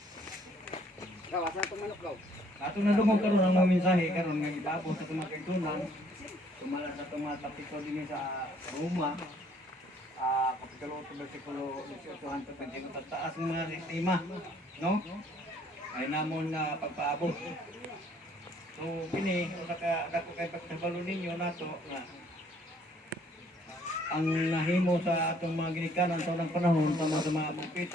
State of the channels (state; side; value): normal; both; correlation 0.62